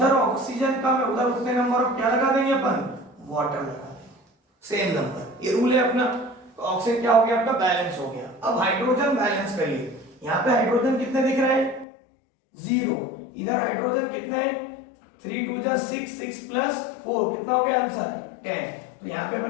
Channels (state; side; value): drops out; right; at 11.9 s